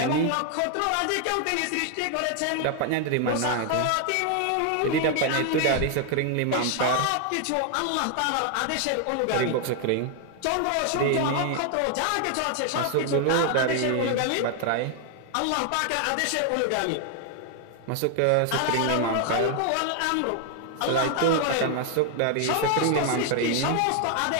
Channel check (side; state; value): both; different; correlation 0.00